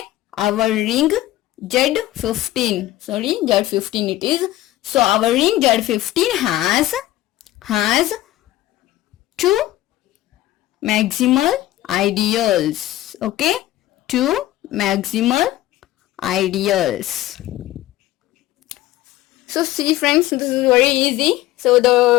our ring Z15, sorry, Z15 it is. So our ring Z15 has 2 maximal ideals. Okay, 2 maximal ideals. So see friends, this is very easy. So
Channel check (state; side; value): quieter; right; 15.6 dB